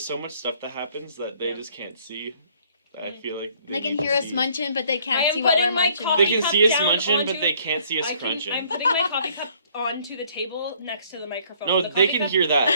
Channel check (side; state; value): both; inverted; correlation -0.61